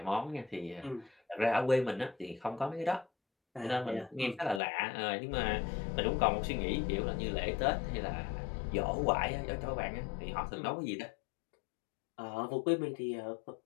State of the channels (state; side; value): drops out; right; at 4.6 s